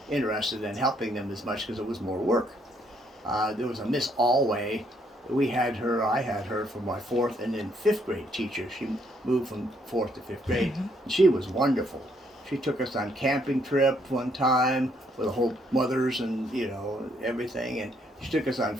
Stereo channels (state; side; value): normal; both; correlation 0.71